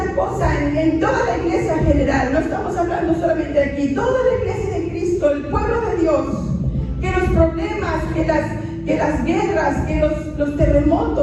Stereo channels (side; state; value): both; identical; correlation 1.00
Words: cosa en toda la iglesia en general. No estamos hablando solamente de aquí, toda la iglesia de Cristo, el pueblo de Dios, que los problemas, que las guerras, que los